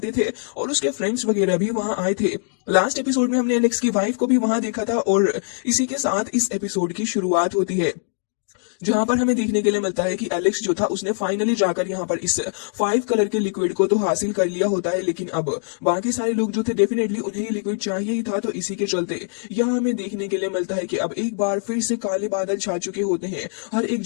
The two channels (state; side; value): silent; right; digital silence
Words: थे और उसके फ्रेंड्स वगैरह भी वहां आए थे। लास्ट एपिसोड में हमने एलेक्स की वाइफ को भी वहां देखा था और इसी के साथ इस एपिसोड की शुरुआत होती है, जहां पर हमें देखने के लिए मिलता है कि एलेक्स जो था उसने फाइनली जाकर यहाँ पर इस 5 कलर के लिक्विड को तो हासिल कर लिया होता है, लेकिन अब बाकी सारे लोग जो थे डेफिनेटली उन्हें ये लिक्विड चाहिए ही था, तो इसी के चलते यहाँ हमें देखने के लिए मिलता है कि अब एक बार फिर से काले बादल छा चुके होते हैं हर एक